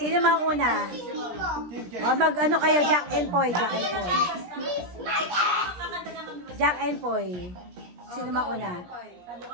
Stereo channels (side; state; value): left; late; 17 ms